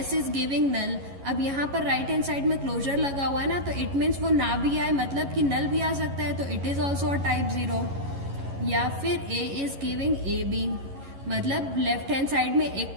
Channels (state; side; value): late; left; 11 ms